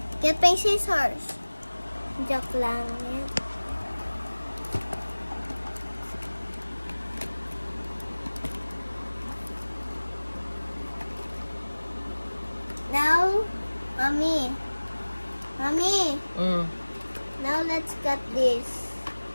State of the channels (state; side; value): inverted; both; correlation -1.00